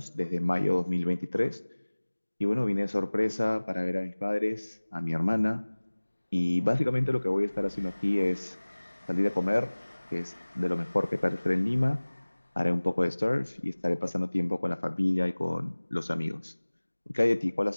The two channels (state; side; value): inverted; both; correlation -1.00